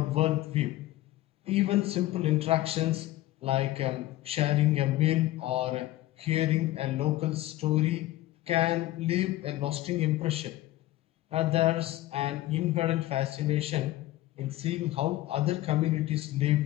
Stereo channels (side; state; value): right; quieter; 16.1 dB